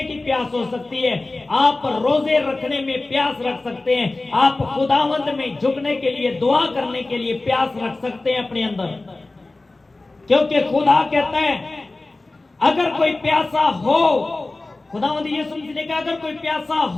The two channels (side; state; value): right; quieter; 3.1 dB